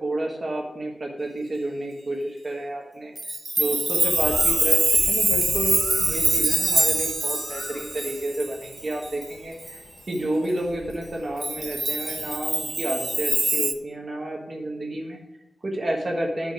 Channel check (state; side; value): normal; both; correlation 0.93